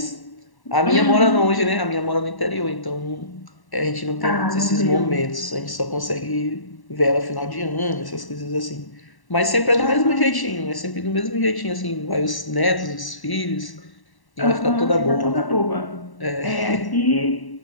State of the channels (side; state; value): right; late; 1.1 ms